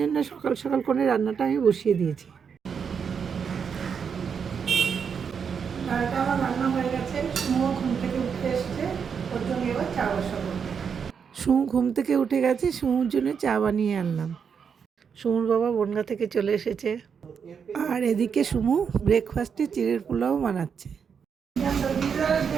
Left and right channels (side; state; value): left; quieter; 6.7 dB